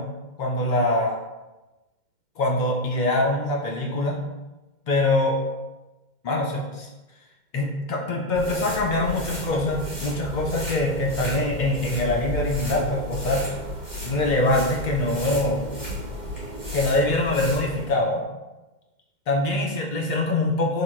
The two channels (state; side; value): late; right; 2.1 ms